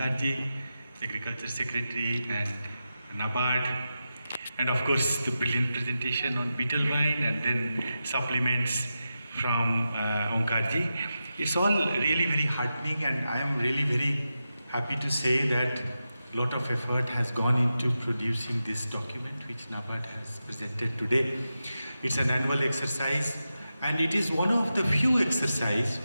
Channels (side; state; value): both; inverted; correlation -0.90